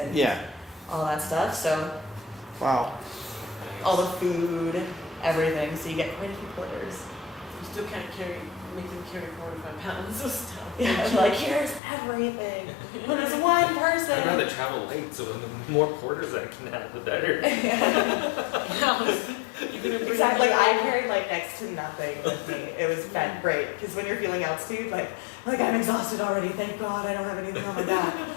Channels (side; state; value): right; drops out; at 11.8 s